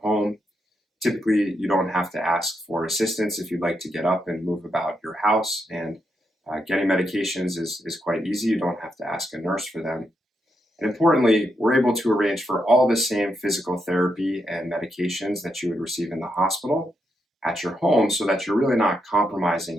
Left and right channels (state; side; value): normal; both; correlation 0.82